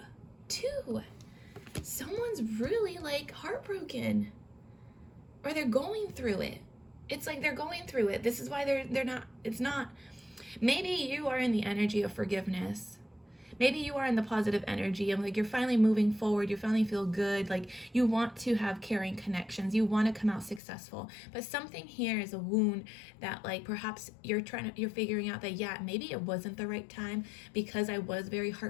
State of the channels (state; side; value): drops out; right; at 20.6 s